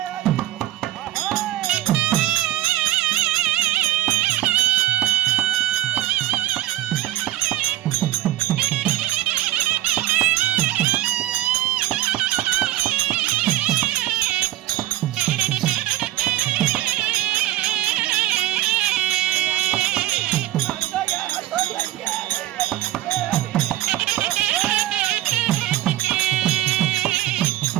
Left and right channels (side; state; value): left; quieter; 14.6 dB